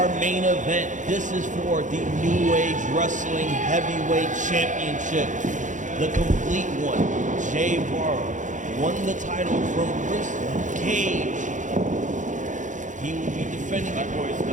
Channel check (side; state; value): left; late; 0.36 ms